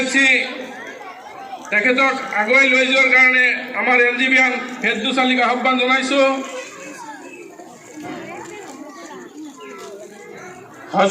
তেখেতক আগুৱাই লৈ যোৱাৰ কাৰণে আমাৰ এনজিবিয়ান ফেৰদৌস আলীক আহ্বান জনাইছো।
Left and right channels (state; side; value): identical; both; correlation 1.00